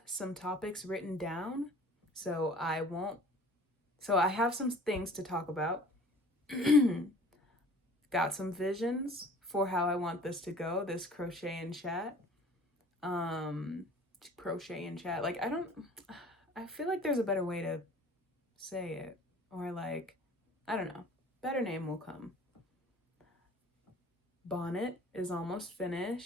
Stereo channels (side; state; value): both; normal; correlation 0.48